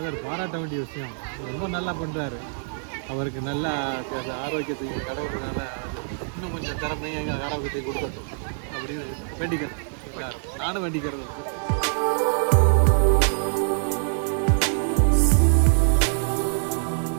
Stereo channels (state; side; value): silent; left; digital silence